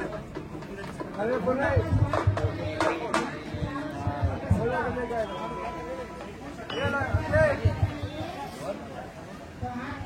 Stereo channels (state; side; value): identical; both; correlation 1.00